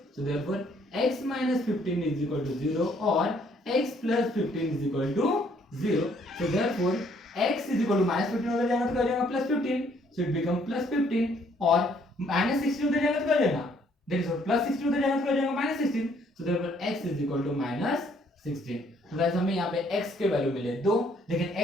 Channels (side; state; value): both; normal; correlation 0.65